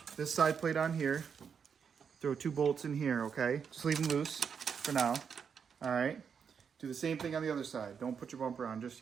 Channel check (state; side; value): quieter; left; 6.8 dB